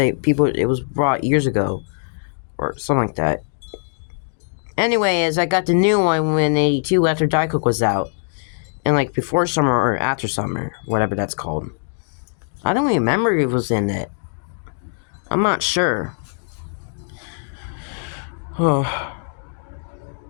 was brought years ago, or something like that. Anyways, I got the new one in '82 after Diet Coke was out, and like before summer or after summer, whatever that's called. I don't remember if it was in it. I'm not sure. Oh.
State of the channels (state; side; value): silent; right; digital silence